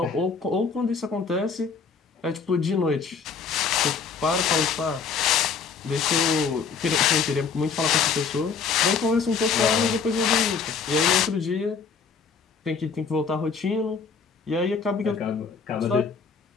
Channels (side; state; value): right; quieter; 5.6 dB